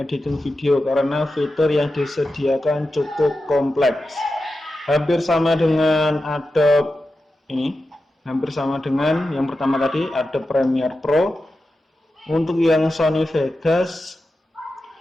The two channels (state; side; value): normal; both; correlation 0.91